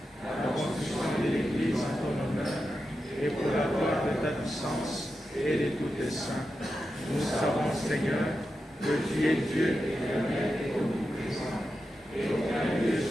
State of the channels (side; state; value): both; normal; correlation 0.89